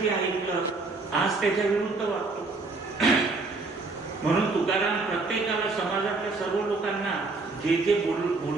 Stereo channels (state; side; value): quieter; left; 3.6 dB